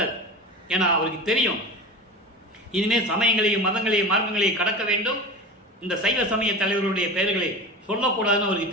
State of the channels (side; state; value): both; normal; correlation 0.31